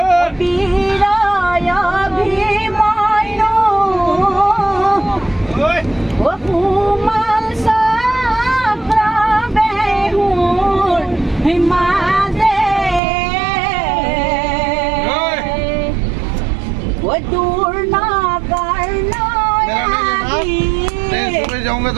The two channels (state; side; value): drops out; left; at 13.0 s